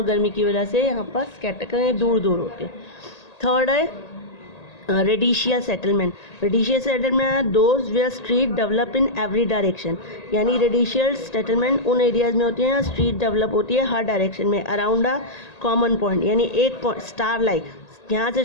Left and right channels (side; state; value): right; late; 1.8 ms